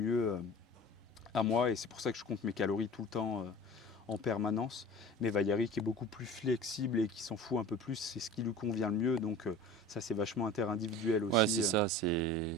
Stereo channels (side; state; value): both; normal; correlation 0.39